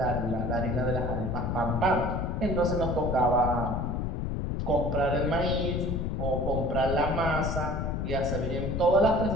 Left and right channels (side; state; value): left; noise; rumble, 1 dB below the sound